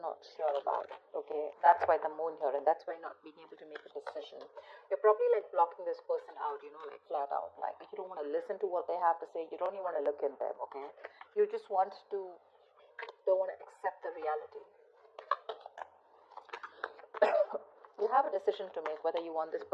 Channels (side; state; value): both; identical; correlation 1.00